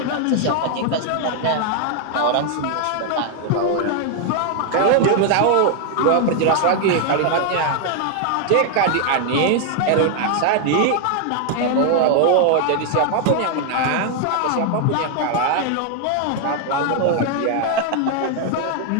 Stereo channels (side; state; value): both; different; correlation 0.00